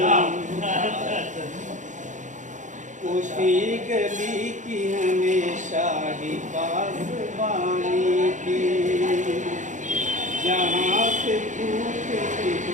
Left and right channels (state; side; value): late; left; 0.36 ms